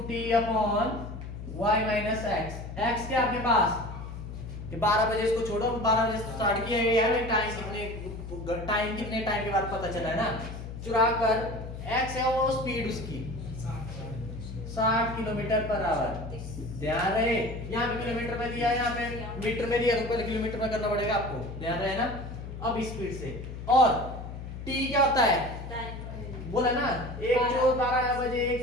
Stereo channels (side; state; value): left; noise; hum, 9 dB below the sound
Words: t upon y minus x, x क्या आपके पास, ये 12 बजे इसको छोड़ो, 12 बजे स्टार्ट किया है, टाइम कितने टाइम के बाद पता चला है ना, चुरा कर, x है वो स्पीड उसकी 60 किलोमीटर पर आवर, ध्यान रहे, यहाँ पे किलोमीटर में दिया है, यहाँ पे मीटर में दिया, तो पहले किलोमीटर में करना पड़ेगा आपको, ध्यान रहे ना। अब स्पीड से, और t क्या होता है, बोला ना, एक चोर 12 बजे